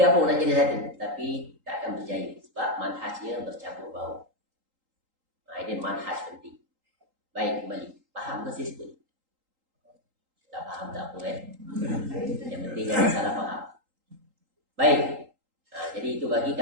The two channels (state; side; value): late; left; 3.8 ms